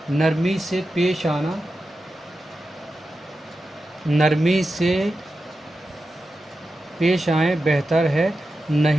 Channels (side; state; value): both; normal; correlation 0.91